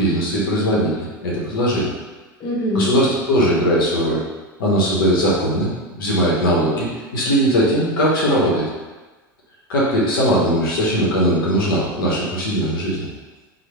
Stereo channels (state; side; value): normal; both; correlation 0.12